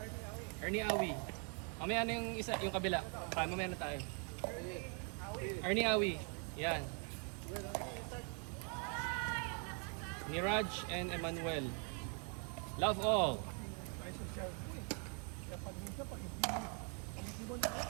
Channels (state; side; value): quieter; left; 39.5 dB